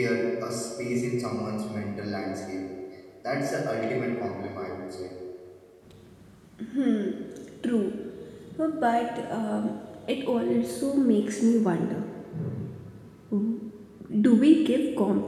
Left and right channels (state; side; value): identical; both; correlation 1.00